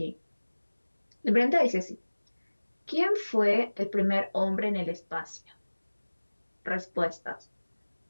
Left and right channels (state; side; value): inverted; both; correlation -1.00